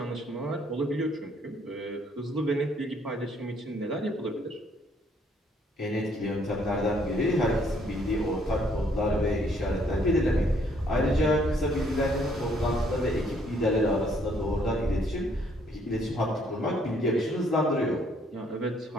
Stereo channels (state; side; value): normal; both; correlation 0.66